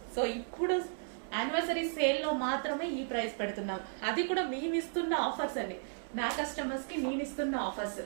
సో ఇప్పుడు యానివర్సరీ సేల్ లో మాత్రమే ఈ ప్రైస్ పెడుతున్నాం. అది కూడా మేము ఇస్తున్న ఆఫర్స్ అండి, నా కస్టమర్స్ కి నేను ఇస్తున్న offers.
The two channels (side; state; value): left; silent; digital silence